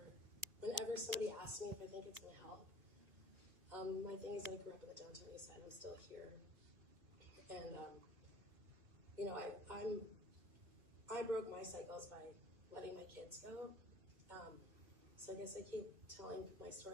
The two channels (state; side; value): late; left; 2.4 ms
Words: Whenever somebody asks me if I think it's going to help, my thing is I grew up in the downtown east side. I'm still here, and I broke my cycles by letting my kids go. So I guess I keep telling my